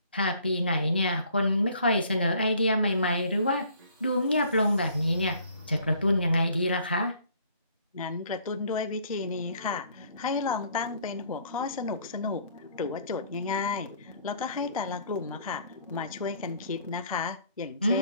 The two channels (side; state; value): both; inverted; correlation -0.58